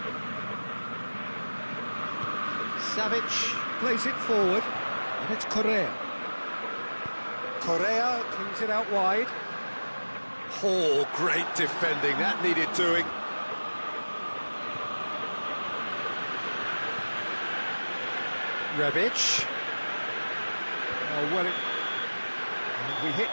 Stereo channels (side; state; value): both; inverted; correlation -1.00